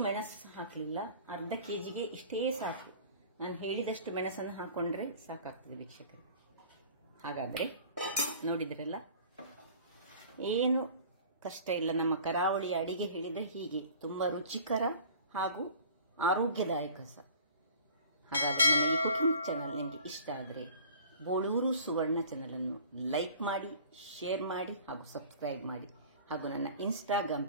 ಮೆಣಸು ಹಾಕಲಿಲ್ಲ. ಅರ್ಧ ಕೆಜಿಗೆ ಇಷ್ಟೇ ಸಾಕು. ನಾನು ಹೇಳಿದಷ್ಟು ಮೆಣಸನ್ನು ಹಾಕೊಂಡ್ರೆ ಸಾಕಾಗ್ತದೆ ವೀಕ್ಷಕರೇ. ಹಾಗಾದ್ರೆ ನೋಡಿದ್ರಲ್ಲ, ಏನು ಕಷ್ಟ ಇಲ್ಲ. ನಮ್ಮ ಕರಾವಳಿಯ ಅಡಿಗೆ ಹೇಳಿದ್ರೆ ಹೀಗೆ ತುಂಬಾ ರುಚಿಕರ ಹಾಗೂ ಆರೋಗ್ಯದಾಯಕ ಸಹ. ಹಾಗಾದ್ರೆ ನನ್ನ ಈ ಕುಕಿಂಗ್ ಚಾನಲ್ ನಿಮಗೆ ಇಷ್ಟ ಆದರೆ ಬೋಳೂರು ಸುವರ್ಣ ಚಾನಲ್ ಅನ್ನು ಲೈಕ್ ಮಾಡಿ, ಶೇರ್ ಮಾಡಿ ಹಾಗೂ ಸಬ್ಸ್ಕ್ರೈಬ್ ಮಾಡಿ, ಹಾಗೂ ನನ್ನ ಇನ್ಸ್ಟಾಗ್ರಾಮ್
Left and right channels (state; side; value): inverted; both; correlation -0.46